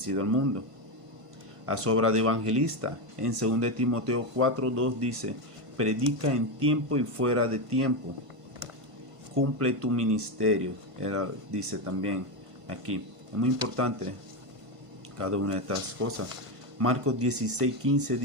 al mundo. Haz obra de evangelista. En 2 Timoteo 4:2 dice, predica en tiempo y fuera de tiempo. Cumple tu ministerio. Dice también aquí. Es muy importante cada una de estas cosas. Marcos 16:15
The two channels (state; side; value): late; left; 1.5 ms